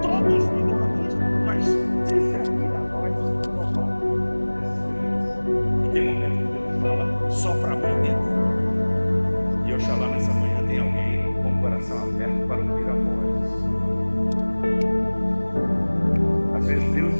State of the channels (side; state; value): both; inverted; correlation -1.00